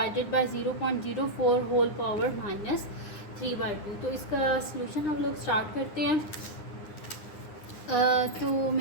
by 0.04 whole power -3/2। तो इसका सलूशन हम लोग स्टार्ट करते हैं। तो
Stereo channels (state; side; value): late; right; 9.8 ms